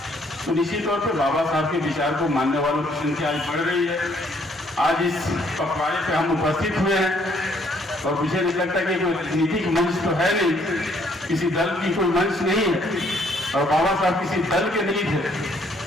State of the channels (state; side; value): normal; both; correlation 0.66